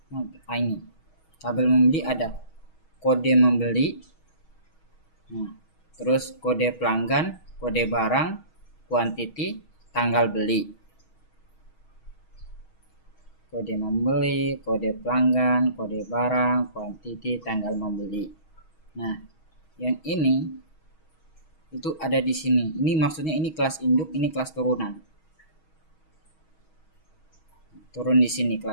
tabel membeli ada kode membeli, terus kode pelanggan, kode barang, quantity, tanggal beli. Kode membeli, kode pelanggan, kode barang, quantity, tanggal membeli. Nah, yang ini itu ada di sini. Ini maksudnya ini kelas induk, ini kelas turunan. turun di sini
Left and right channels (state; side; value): late; right; 6.3 ms